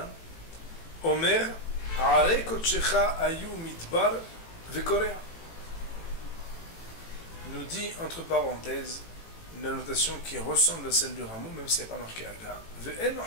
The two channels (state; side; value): late; right; 18 ms